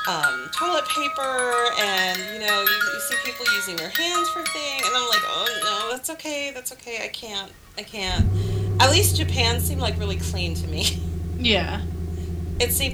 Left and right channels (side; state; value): both; identical; correlation 1.00